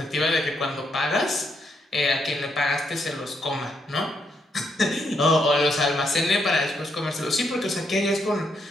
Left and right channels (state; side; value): normal; both; correlation 0.77